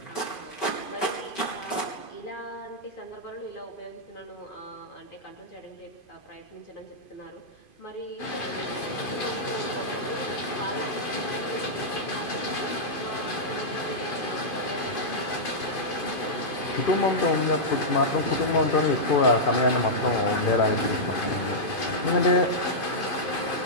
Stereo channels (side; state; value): right; late; 2.5 ms